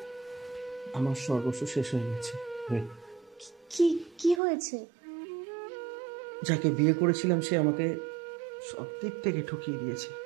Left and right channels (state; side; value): drops out; left; at 4.4 s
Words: আমার সর্বস্ব শেষ হয়ে গেছে। কি কি হয়েছে? যাকে বিয়ে করেছিলাম সে আমাকে সব দিক থেকে ঠকিয়ে দিয়েছে।